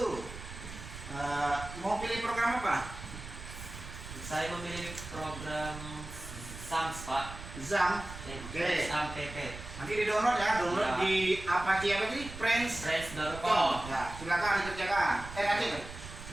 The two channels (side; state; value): right; noise; rumble, 12 dB below the sound